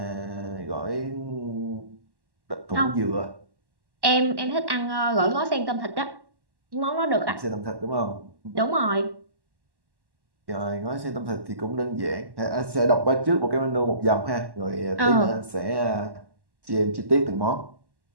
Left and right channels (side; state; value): left; late; 1.1 ms